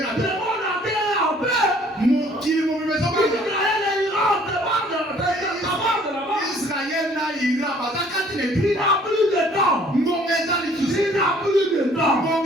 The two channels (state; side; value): normal; both; correlation 0.57